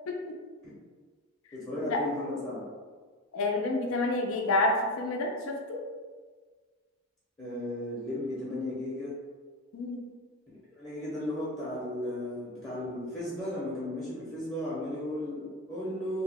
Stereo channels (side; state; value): both; normal; correlation 0.18